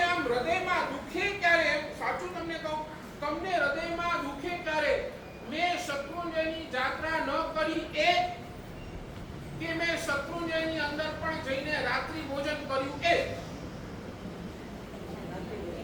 આમ હૃદયમાં દુખે ક્યારે? સાચું તમને કહું, તમને હૃદયમાં દુખે ક્યારે? મેં શત્રુંજયની જાત્રા ન કરી એ કે મેં શત્રુંજયની અંદર પણ જઈને રાત્રિ ભોજન કર્યું એ?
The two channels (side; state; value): both; identical; correlation 1.00